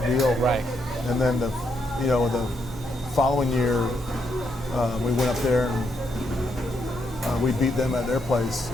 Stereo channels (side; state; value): both; normal; correlation 0.78